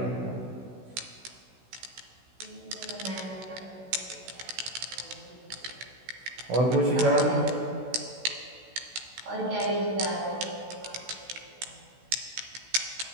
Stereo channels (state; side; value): late; left; 16 ms